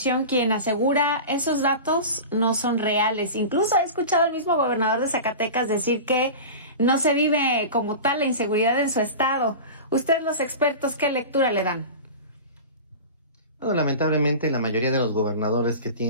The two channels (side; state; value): both; inverted; correlation -0.31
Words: quien asegura esos datos no son reales. Incluso he escuchado al mismo gobernador de Zacatecas decir que no se vive como tal la inseguridad en su estado. Ustedes, los expertos, ¿qué lectura le dan? Bueno, lamentablemente la mayoría de los gobernadores que